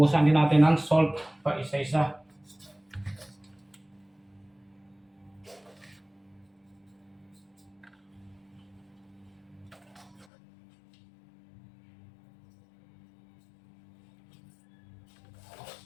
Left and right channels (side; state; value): right; drops out; at 10.2 s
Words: din natin ng salt pa isa-isa.